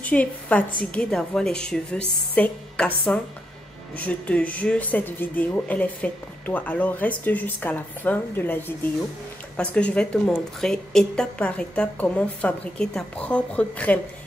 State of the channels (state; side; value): normal; both; correlation 0.81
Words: tu es fatigué d'avoir les cheveux secs, cassants, je te jure, cette vidéo, elle est faite pour toi. Alors reste jusqu'à la fin de la vidéo parce que je vais te montrer étape par étape comment fabriquer ta propre crème